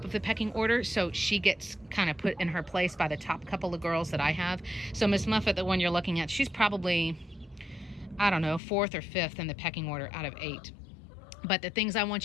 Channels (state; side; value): drops out; right; at 8.6 s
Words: of the pecking order, so she gets kind of put in her place by the top couple of girls that I have. So Miss Muffet, the one you're looking at, she's probably, I don't know, 4th or 5th in the pecking order out of 8. But the things I